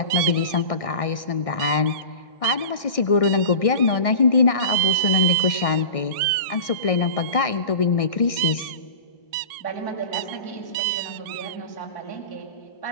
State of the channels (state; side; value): late; right; 1.6 ms